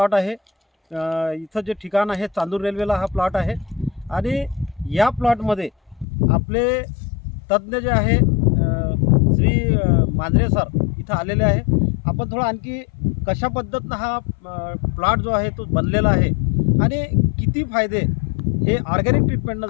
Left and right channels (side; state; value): right; drops out; at 6.1 s